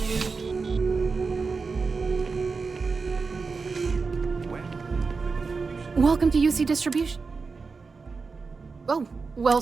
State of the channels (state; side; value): quieter; left; 4.6 dB